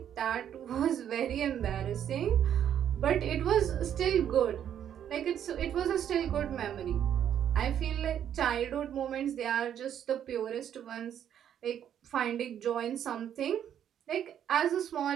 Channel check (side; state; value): left; quieter; 9.7 dB